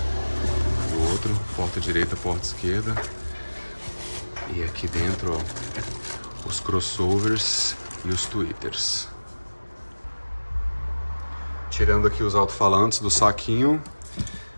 O outro, porta direita, porta esquerda. E aqui dentro, ó, os crossovers e os tweeters. Tirando aqui os alto-falantes do saquinho.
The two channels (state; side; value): inverted; both; correlation -1.00